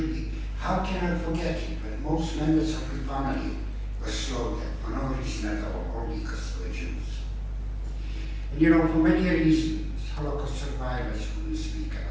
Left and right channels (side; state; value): both; identical; correlation 1.00